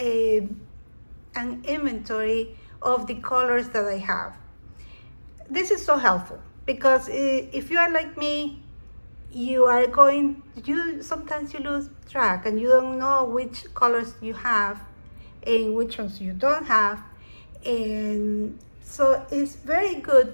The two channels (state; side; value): inverted; both; correlation -1.00